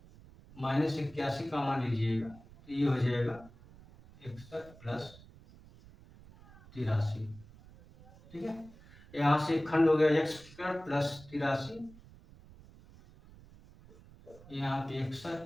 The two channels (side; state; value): right; noise; rumble, 21 dB below the sound